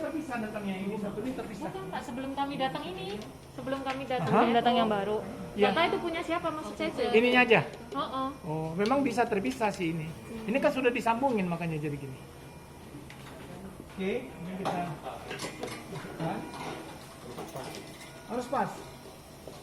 datangnya. Ini satu ini terpisah. Bukan Pak, sebelum kami datang ini, sebelum kami datang. Aha. Belum datang yang baru. Iya. Kata itu punya siapa maksud saya? Cek. Ininya aja. Oh, Oh memang bisa terpisah sih ini. Ini kan sudah disambungin makanya jadi gini. Oke, ini kita masukkan. Harus pas.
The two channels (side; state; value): both; identical; correlation 1.00